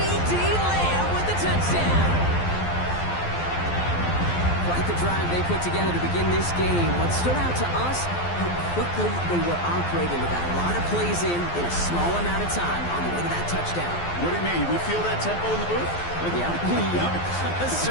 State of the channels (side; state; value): right; late; 12 ms